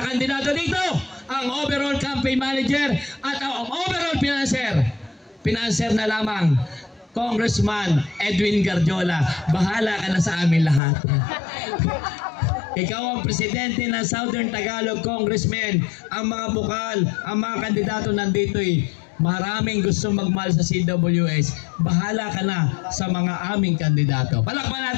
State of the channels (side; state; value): right; drops out; at 10.8 s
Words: kandidato dito, ang overall campaign manager at ang overall financer. Financer na lamang, Congressman Edwin Garjola. Bahala ka na sa amin lahat. Ikaw ang presidente ng Southern Tagalog Congressmen. Ang mga bukal, ang mga kandidato nandito maraming gusto magmahal sa CWS. Bahala ka na sa mga aming kandidato. Palakpan